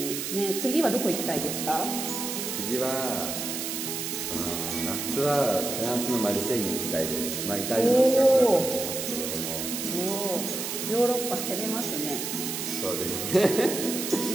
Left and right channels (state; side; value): noise; right; hiss, 4 dB below the sound